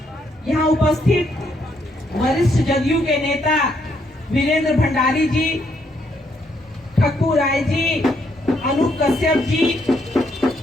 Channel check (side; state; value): both; normal; correlation 0.74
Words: यहाँ उपस्थित वरिष्ठ जदयू के नेता वीरेंद्र भंडारी जी, ठक्कू राय जी, अनूप कश्यप जी,